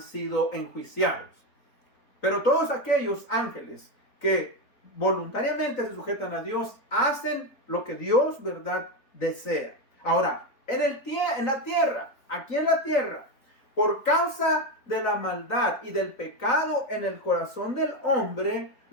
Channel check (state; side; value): late; right; 3.9 ms